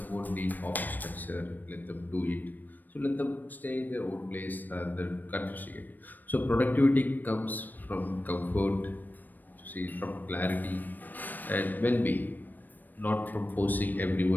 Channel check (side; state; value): right; late; 0.089 ms